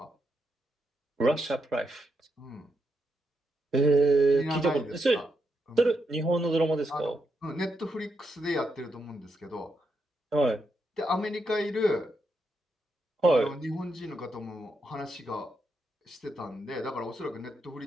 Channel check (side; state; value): both; normal; correlation 0.82